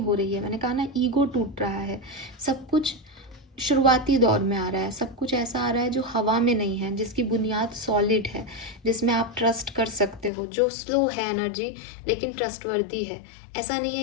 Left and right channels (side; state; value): right; drops out; at 10.3 s